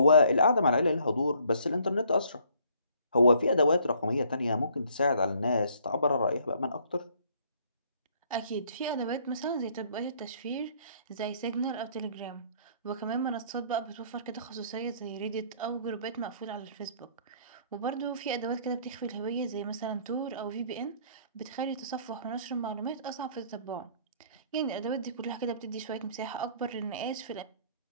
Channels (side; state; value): both; inverted; correlation -0.61